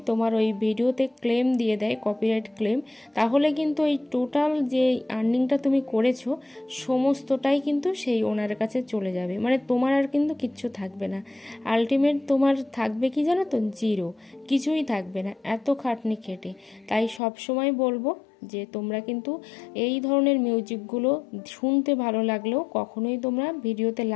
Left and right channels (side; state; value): right; drops out; at 17.2 s